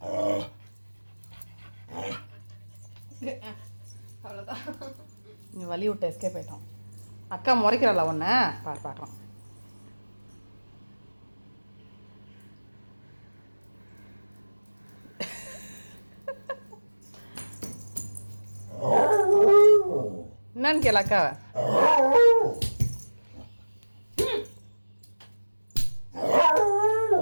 அவ்வளோதான். நீ வலி விட்டு எஸ்கேப் ஆயிட்டோம். அக்கா முறைக்கிறாளா ஒன்று பார்க்கலாம். என்னன்னு கேள அக்காவை.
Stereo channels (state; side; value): inverted; both; correlation -1.00